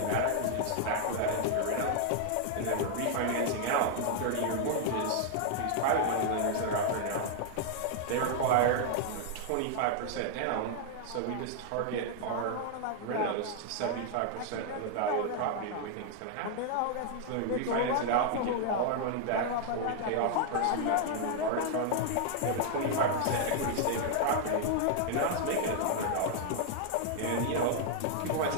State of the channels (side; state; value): both; different; correlation 0.00